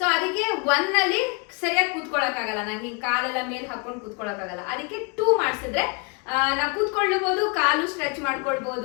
ಅದಕ್ಕೆ 1 ಅಲ್ಲಿ ಸರಿಯಾಗಿ ಕೂತ್ಕೊಳಕ್ ಆಗಲ್ಲ, ನಂಗೆ ಕಾಲೆಲ್ಲ ಮೇಲೆ ಹಾಕೊಂಡು ಕೂತ್ಕೊಳಕ್ ಆಗಲ್ಲ. ಅದಕ್ಕೆ 2 ಮಾಡಿಸಿದ್ರೆ ನಾವು ಕೂತ್ಕೊಳ್ಬಹುದು, ಕಾಲು ಸ್ಟ್ರೆಚ್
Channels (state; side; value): quieter; right; 31.4 dB